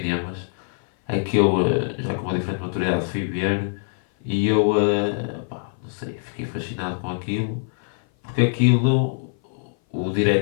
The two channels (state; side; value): silent; right; 57 dB below the other